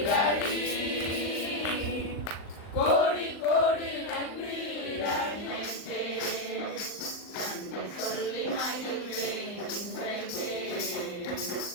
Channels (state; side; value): late; right; 39 ms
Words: டாடி, கோடி கோடி நன்றி டாடி. நன்றி சொல்லி மகிழ்வேன் இன்றைக்கே,